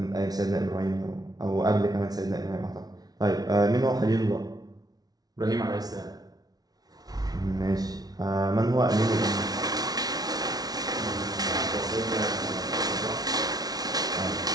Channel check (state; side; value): late; left; 0.19 ms